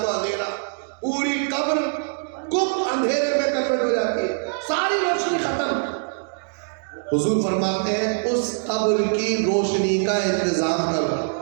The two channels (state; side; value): silent; left; digital silence